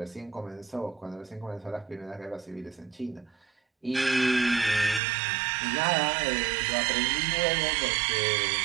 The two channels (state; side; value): drops out; left; at 5.0 s